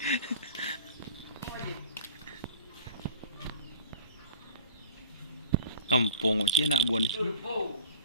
Kampung cik anak buah ni. Turbo.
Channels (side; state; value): both; inverted; correlation -0.40